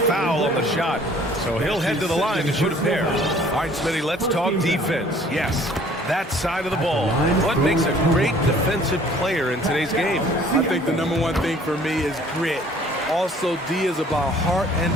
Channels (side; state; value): both; normal; correlation 0.55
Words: on the shot. So he'll head to the line to shoot a pair. All right, Smitty, let's talk defense. Yes, that side of the ball. What makes a great defensive player in today's game? I think the #1 thing for me is grit. Also, D is about heart and